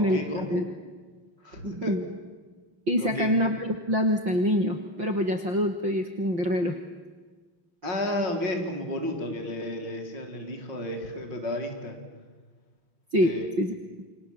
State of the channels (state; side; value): late; left; 5.8 ms